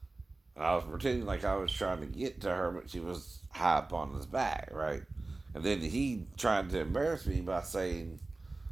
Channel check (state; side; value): quieter; left; 3.2 dB